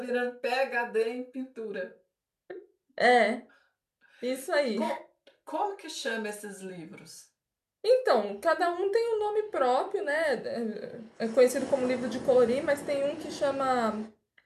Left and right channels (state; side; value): identical; both; correlation 1.00